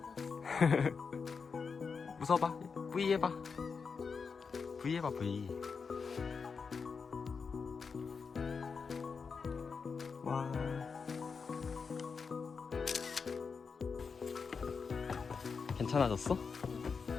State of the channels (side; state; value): right; quieter; 5.4 dB